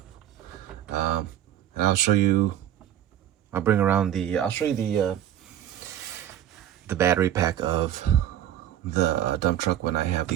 And I'll show you. I'll show you the battery pack of the dump truck when I have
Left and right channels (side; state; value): left; quieter; 11.3 dB